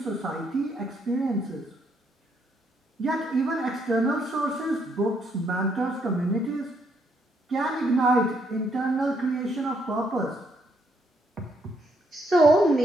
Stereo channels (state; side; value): normal; both; correlation 0.73